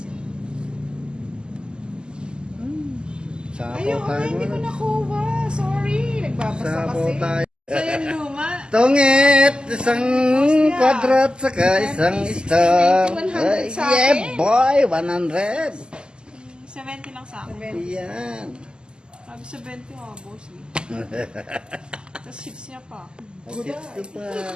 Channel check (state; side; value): late; left; 0.047 ms